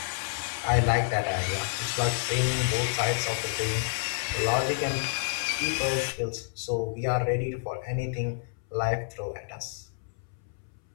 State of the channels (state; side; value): silent; right; 59 dB below the other